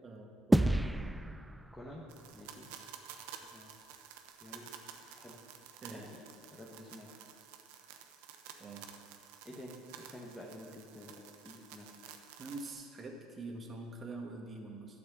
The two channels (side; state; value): both; normal; correlation 0.90